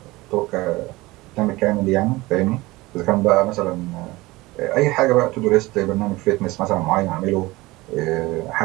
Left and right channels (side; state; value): left; quieter; 20.6 dB